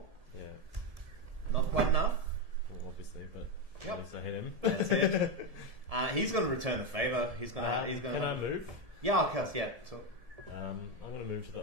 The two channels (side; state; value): left; late; 1.7 ms